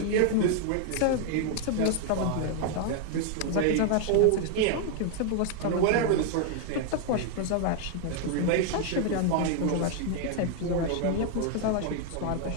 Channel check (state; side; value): different; both; correlation 0.00